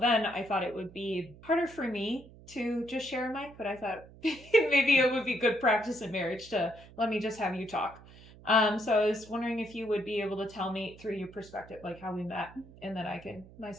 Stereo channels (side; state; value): right; noise; hum, 21 dB below the sound